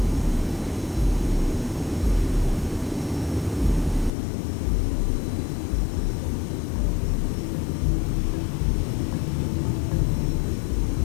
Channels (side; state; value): right; drops out; at 4.1 s